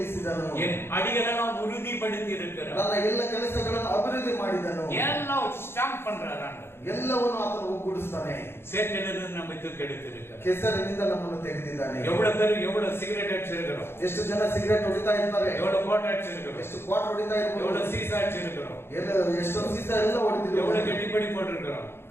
என் அடிகளெல்லாம் உறுதிப்படுத்தி இருக்கிறார், ನನ್ನ ಎಲ್ಲ ಕೆಲಸಗಳನ್ನು ಅಭಿವೃದ್ಧಿ ಮಾಡಿದನು. எல்லாம் ஸ்டாம்ப் பண்றார். ಎಲ್ಲವನ್ನು ಆತನು ಒಗ್ಗೂಡಿಸ್ತಾನೆ. சேற்றிலிருந்து நம்ம தூக்கி எடுத்திருக்கிறார். ಕೆಸರಿನಿಂದ ನಮ್ಮನ್ನು ತೆಗೆದಿದ್ದಾನೆ. எவ்வளவு பேர் எவ்வளவு சிகரெட் அடிச்சிருக்கிறோம், ಎಷ್ಟು ಜನ ಸಿಗರೇಟ್ ಹೊಡಿತಾ ಇರ್ತಾರೆ, எவ்வளவு கோட்டை அடிச்சிருக்கிறோம், ಎಷ್ಟು ಕ್ವಾಟ್ ಹೊಡಿತಾ ಇರ್ಬೋದು, எவ்வளவு சீசா அடிச்சிருக்கிறோம், ಎಷ್ಟೊಂದು ಸೀಸ ಎಲ್ಲ ಹೊಡೆದಿದ್ರು, எவ்வளவு கட்டிப்படி போட்டிருக்கிறோம்,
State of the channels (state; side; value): late; right; 0.11 ms